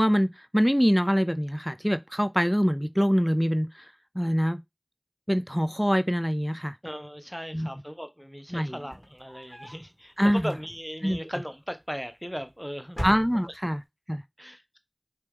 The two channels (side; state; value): both; identical; correlation 1.00